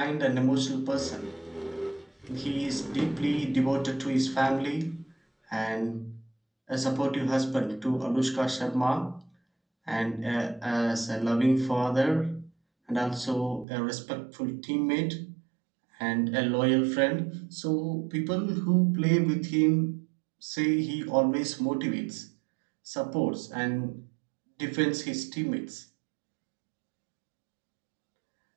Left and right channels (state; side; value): drops out; left; at 13.7 s